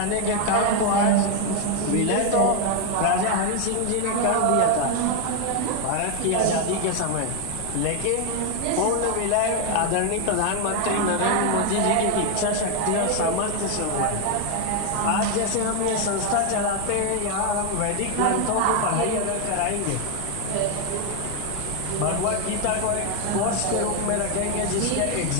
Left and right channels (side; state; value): both; different; correlation 0.01